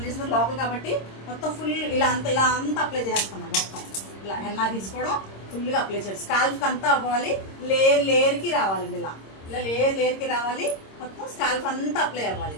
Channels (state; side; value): late; right; 26 ms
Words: చేసిన లోపల కాబట్టి మొత్తం ఫుల్ ఇలా అంతా అప్లై చేస్తాం మొత్తం. ఇలా హెన్నా తీసుకోవడం ఫుల్గా అప్లై చేయడం, స్కాల్ఫ్కి అంతా అవ్వాలి, లేయర్కి రావాలండి. ఇలా ఇలా లేయర్కి రావాలి, మొత్తం స్కాల్ఫ్ అంతా అప్లై అవ్వాలి.